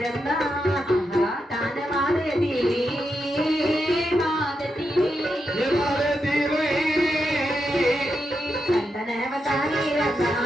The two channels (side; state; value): both; normal; correlation 0.85